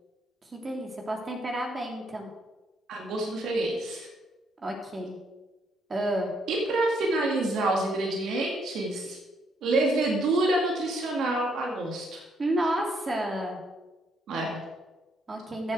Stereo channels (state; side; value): normal; both; correlation 0.72